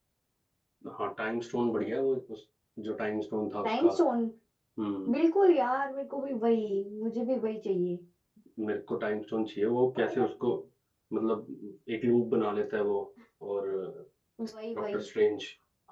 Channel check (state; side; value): identical; both; correlation 1.00